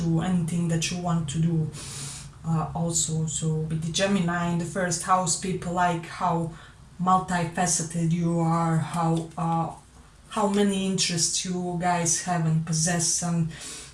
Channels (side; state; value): both; identical; correlation 1.00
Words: anything that you want to do. Also, so with the Gemini in the 1st house, people like how multifaceted you are, how many interests you guys have and possess, and